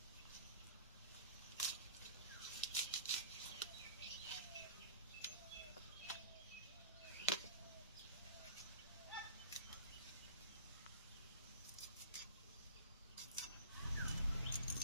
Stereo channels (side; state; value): both; inverted; correlation -0.41